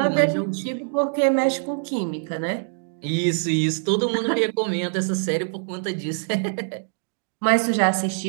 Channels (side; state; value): left; silent; digital silence